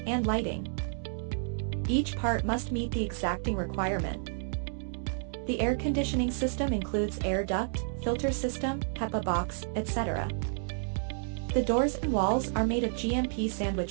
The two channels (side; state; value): left; silent; 57 dB below the other